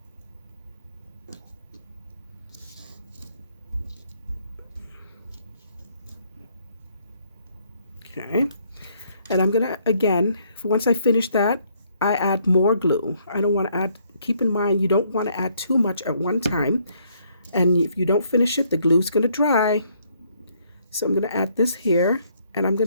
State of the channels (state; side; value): inverted; both; correlation -0.68